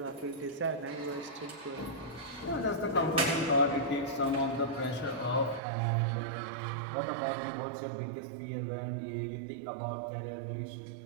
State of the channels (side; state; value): left; drops out; at 5.6 s